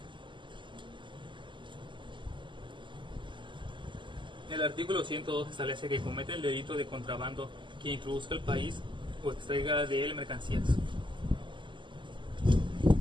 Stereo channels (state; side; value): late; left; 0.24 ms